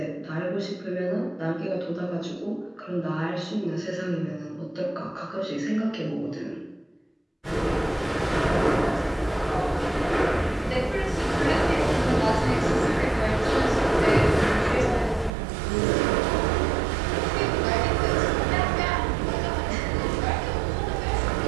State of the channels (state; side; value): drops out; left; at 15.3 s